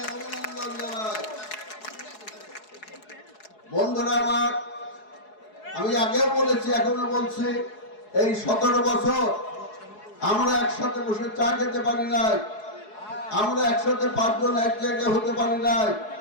অভিনন্দন জানাই। বন্ধুরা আমার, আমি আগেও বলেছি, এখনো বলছি, এই 17 বছর আমরা একসাথে বসে চা খেতে পারি নাই, আমরা একসাথে 5 জন এক জায়গায় হতে পারি নাই।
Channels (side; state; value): right; late; 4.7 ms